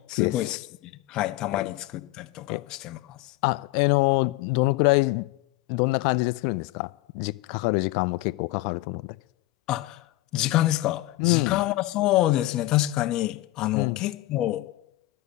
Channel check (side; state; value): right; quieter; 17.9 dB